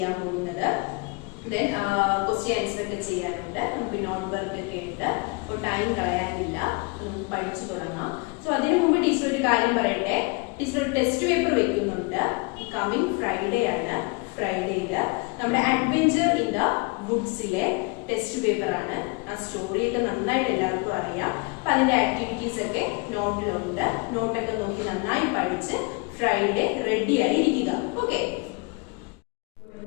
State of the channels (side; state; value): right; quieter; 29.7 dB